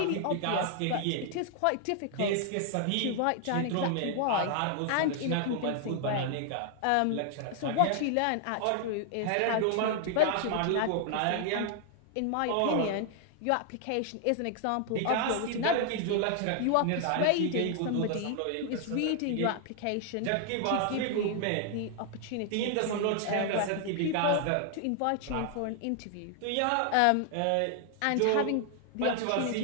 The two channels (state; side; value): different; both; correlation 0.00